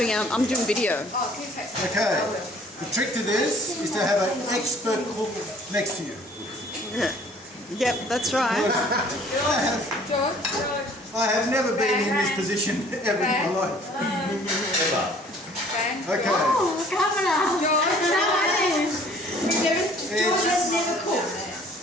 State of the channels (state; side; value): normal; both; correlation 0.54